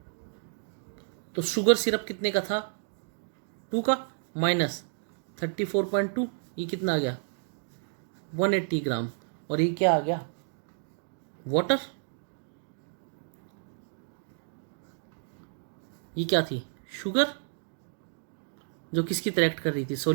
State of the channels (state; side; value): silent; left; digital silence